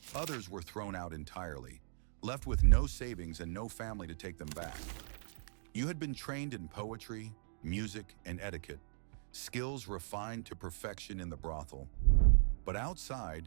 Others were thrown out entirely, left with no savings and no family to take them back. You had been trained in poetry, music, and etiquette, skills refined to perfection in the brothel. But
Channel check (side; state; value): left; silent; digital silence